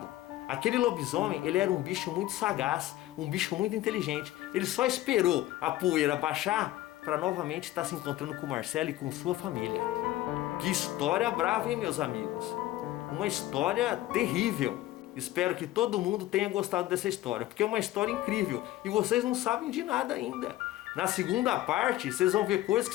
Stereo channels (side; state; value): right; quieter; 15.4 dB